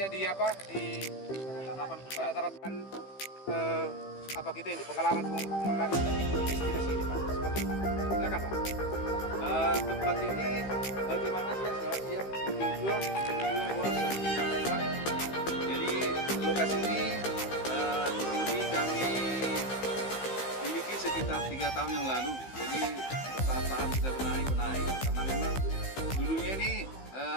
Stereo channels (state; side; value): late; right; 15 ms